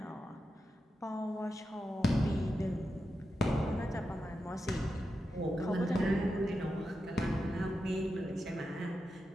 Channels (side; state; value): both; normal; correlation 0.89